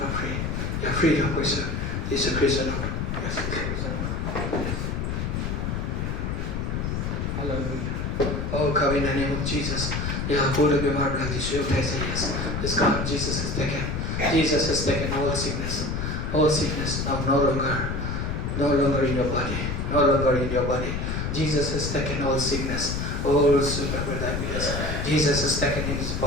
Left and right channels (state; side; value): noise; left; rumble, 2 dB below the sound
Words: free. You're free to worship. He's a prisoner. Yes, he's a prisoner. Hallelujah. Oh, come in the name of Jesus. Yeah, hold up your heart like this. You guys say yes. It's gone. Jesus has taken. Jesus has taken all sickness. All sickness. Now no longer in your body. No longer in your body. Jesus has taken all sickness. All super diabetes. Jesus has taken in his